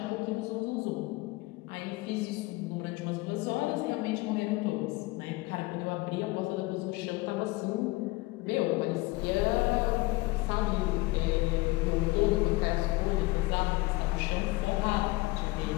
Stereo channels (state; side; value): quieter; right; 21.6 dB